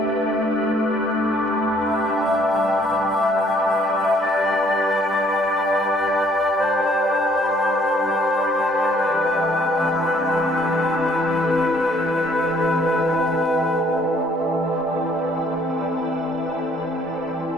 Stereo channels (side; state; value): both; normal; correlation 0.62